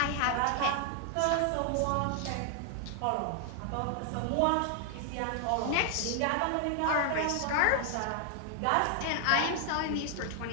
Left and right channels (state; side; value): different; both; correlation 0.00